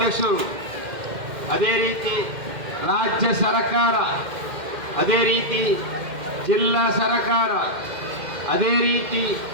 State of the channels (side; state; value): left; late; 2.1 ms